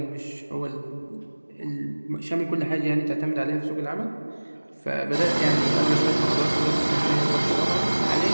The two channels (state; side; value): inverted; both; correlation -1.00